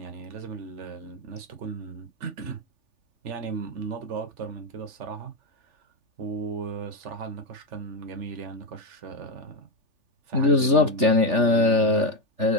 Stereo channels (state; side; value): late; left; 3.4 ms